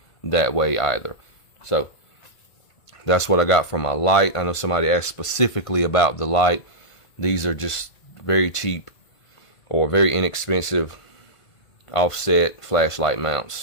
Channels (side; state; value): right; late; 1.5 ms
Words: that way either. So that's what I got for my light. I know somebody asked specifically about the light. These are just very cheap or very inexpensive offset flashlight